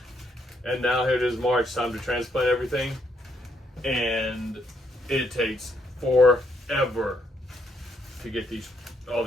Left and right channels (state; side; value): normal; both; correlation 0.74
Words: And now here it is March, time to transplant everything. And it takes forever to get all